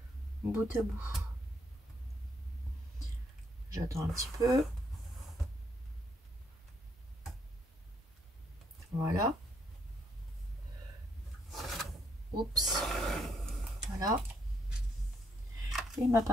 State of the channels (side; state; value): both; normal; correlation 0.73